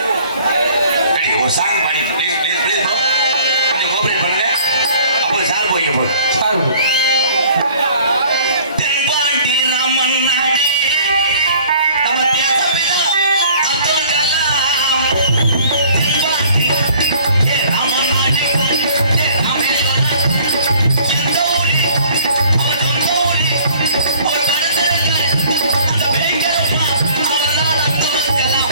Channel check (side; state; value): both; inverted; correlation -0.54